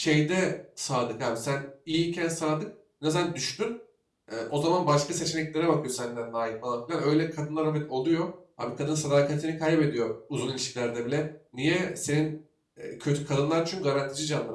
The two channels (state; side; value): identical; both; correlation 1.00